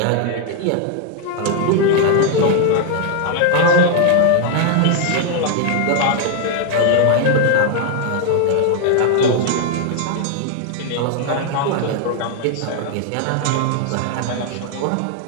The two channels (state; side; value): different; both; correlation 0.00